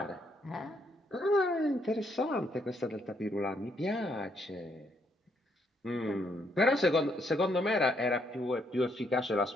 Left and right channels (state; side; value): normal; both; correlation 0.73